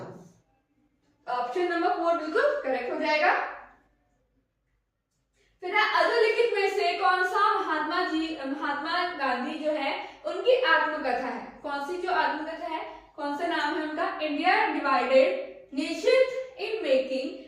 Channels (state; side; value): identical; both; correlation 1.00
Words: ऑप्शन नंबर 4 बिल्कुल करेक्ट हो जाएगा। फिर अधोलिखित में से कौन सा महात्मा गांधी जो है उनकी आत्मकथा है, कौन सी जो आत्मकथा है, कौन सा नाम है उनका, इंडिया डिवाइडेड, निश्चित इन